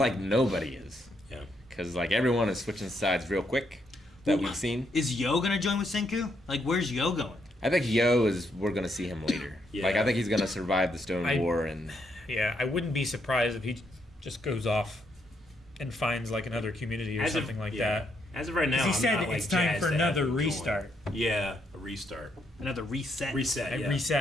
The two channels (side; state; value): both; normal; correlation 0.76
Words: nobody is. Yeah. Because like everyone is switching sides real quick that we've seen. Is Yo gonna join with Senku? Like, where's Yo going? I think we're gonna see him later. Yeah. Like I think he's gonna survive the Stone War and Yeah, I wouldn't be surprised if he just goes off and finds like another community or something like that. As of right now, He I'm said not, like, it's time jazzed for to another have him join. restart. Yeah, a restart. Another reset. Reset. Yeah.